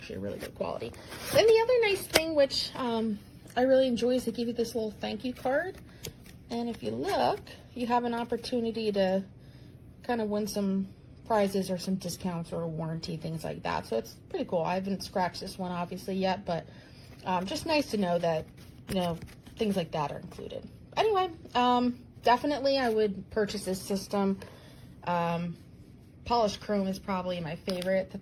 a really good quality. Then the other nice thing, which I really enjoy, is they give you this little thank you card. And if you look, you have an opportunity to kind of win some prizes or some discounts or a warranty, things like that. So it's pretty cool. I haven't scratched this one obviously yet, but just nice to know that, you know, things like that are included. Anyway, definitely I would purchase this system. Polished chrome is probably my favorite that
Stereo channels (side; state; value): both; identical; correlation 1.00